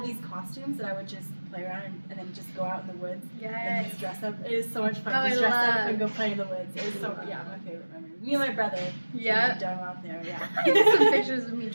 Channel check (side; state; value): both; inverted; correlation -1.00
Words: these costumes that I would just play around and then just go out in the woods and Yes. just dress up. It is so much fun. Oh, Just I dress up love. and go play in the woods. It was my favorite memory. Me and my brother. Yep. Done out there. Yeah. I have some pictures of me